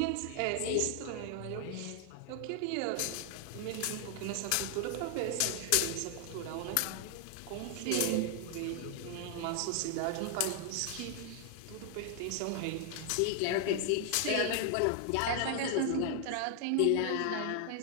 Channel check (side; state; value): both; different; correlation 0.00